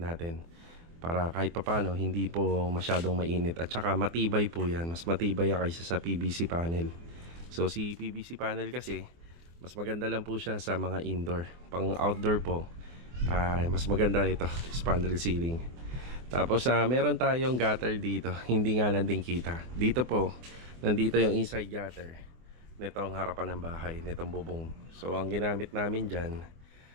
natin. Para kahit papano hindi po masyadong mainit. At saka matibay po yan. Mas matibay kaysa sa PVC panel. So si PVC panel kasi mas maganda lang po siya sa mga indoor. Pang outdoor po, mas maganda ito, spandrel ceiling. Tapos meron tayong gutter dito. Hindi nga lang din kita. Dito po, nandito yung inside gutter nitong harapan ng bahay, nitong bubong. So ang ginamit namin dyan,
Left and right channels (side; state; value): left; late; 24 ms